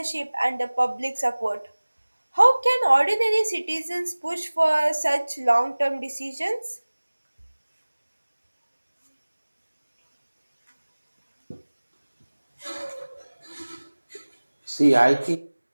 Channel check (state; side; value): inverted; both; correlation -1.00